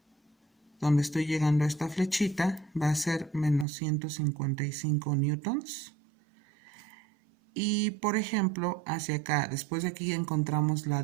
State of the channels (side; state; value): left; drops out; at 3.7 s